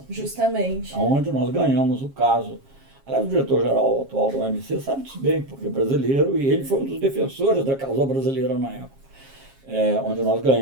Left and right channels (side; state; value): left; late; 7.4 ms